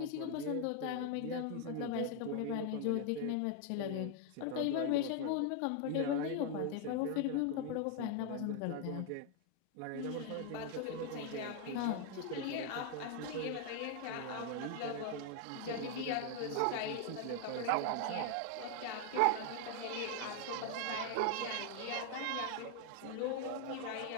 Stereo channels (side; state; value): both; different; correlation 0.00